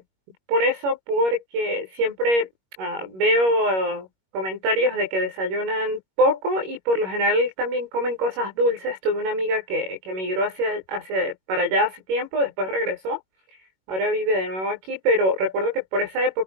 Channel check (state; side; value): late; left; 21 ms